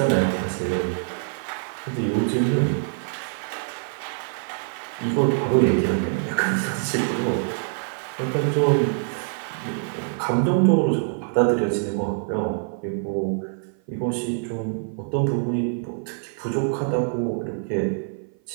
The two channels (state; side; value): silent; left; 55 dB below the other